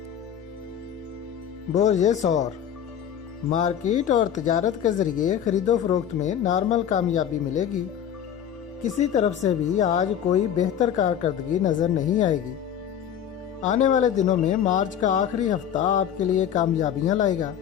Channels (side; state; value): right; quieter; 9.2 dB